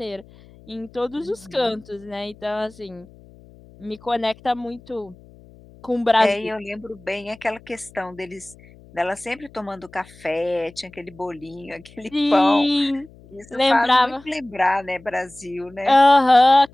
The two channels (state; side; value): noise; left; hum, 24 dB below the sound